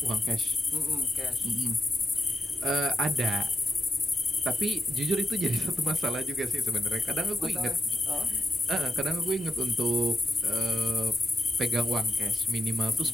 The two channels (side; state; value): both; normal; correlation 0.86